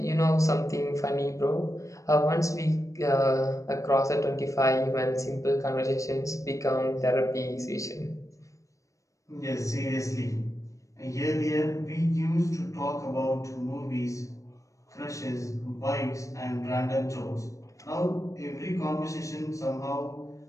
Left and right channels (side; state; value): right; late; 0.15 ms